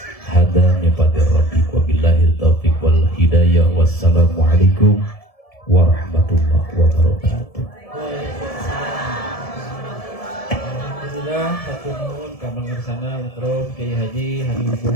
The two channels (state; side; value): late; right; 1.7 ms